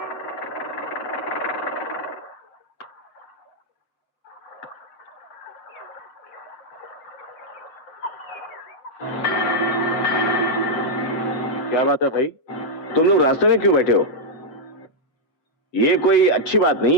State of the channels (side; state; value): right; late; 7.8 ms